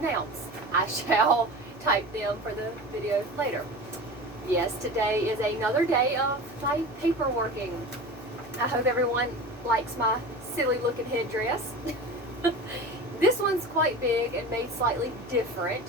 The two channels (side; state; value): left; noise; hum, 19 dB below the sound